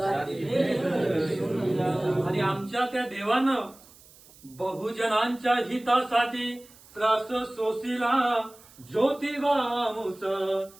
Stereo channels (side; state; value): right; noise; hiss, 24 dB below the sound